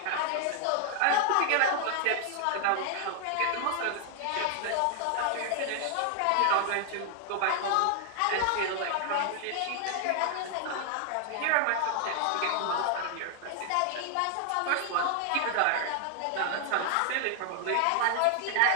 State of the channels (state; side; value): different; both; correlation 0.00